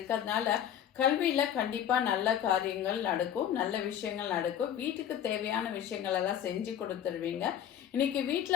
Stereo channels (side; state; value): right; quieter; 10.0 dB